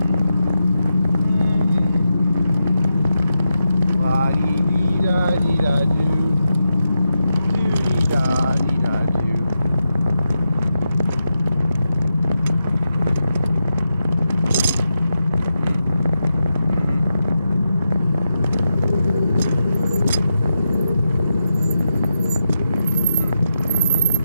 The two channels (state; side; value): inverted; both; correlation -0.87